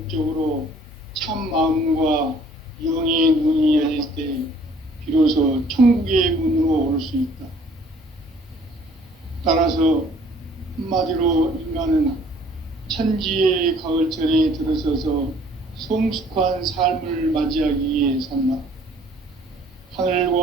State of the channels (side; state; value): both; normal; correlation 0.57